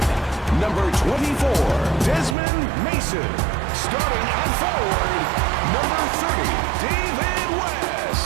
number 24, Desmond Mason. Starting at forward, number 30, David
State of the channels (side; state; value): left; drops out; at 2.4 s